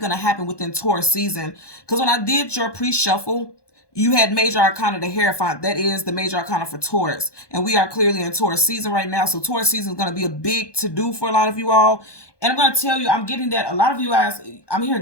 to happen within Taurus season. Because when I did your pre-shuffle, you had Major Arcana the Hierophant. That is the Major Arcana for Taurus. And we are clearly in Taurus season right now. So Taurus season is going to be a big to-do for a lot of you all. And I'm going to tell you, I'm getting that a lot of you guys, I'm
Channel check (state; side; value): late; right; 1.2 ms